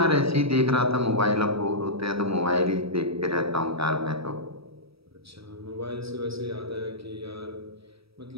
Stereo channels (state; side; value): late; left; 0.77 ms